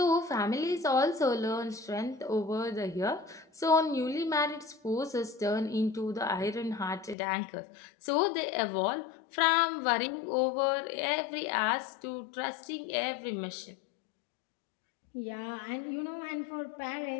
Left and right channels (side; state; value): right; drops out; at 7.2 s